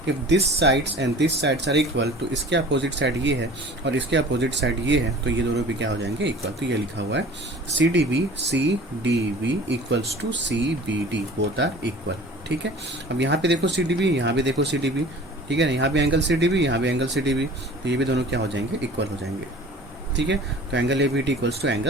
if this sides and this sides are equal, तो इसके अपोजिट साइड ये है और इसके अपोजिट साइड ये है, तो ये दोनों भी क्या हो जाएंगे, इक्वल। तो ये लिखा हुआ है CDB equals to CBD, both are equal, ठीक है। अब यहाँ पे देखो CDB, यहाँ भी देखो CDB, ठीक है ना, यहाँ भी एंगल CDB, यहाँ भी एंगल CDB, तो ये भी दोनों क्या हो जाएंगे, इक्वल हो जाएंगे, ठीक है। तो angle ABD equals to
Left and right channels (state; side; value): normal; both; correlation 0.44